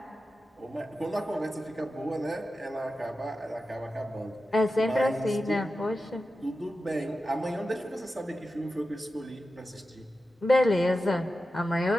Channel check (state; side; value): normal; both; correlation 0.92